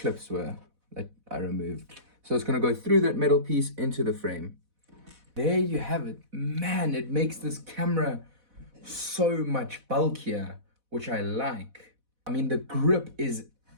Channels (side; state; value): left; late; 4.1 ms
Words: were that I removed. So it's gonna go through that metal piece into the frame. There you have it. Man, it makes this camera so much bulkier, which I like. I mean, the grip is